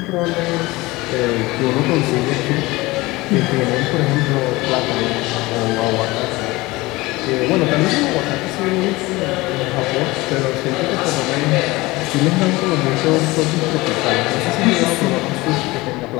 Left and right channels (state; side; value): quieter; right; 21.0 dB